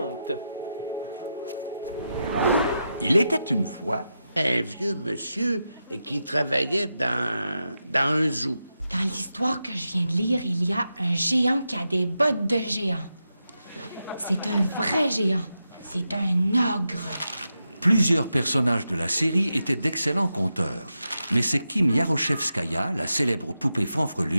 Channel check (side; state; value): both; inverted; correlation -0.88